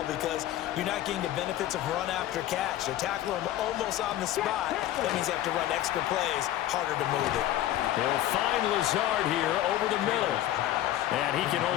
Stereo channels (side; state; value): right; quieter; 13.4 dB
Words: because you're not getting the benefits of run after catch. They're tackling them almost on the spot. That means you have to run extra plays, harder to move it. They'll find Lazard here over the middle. And he can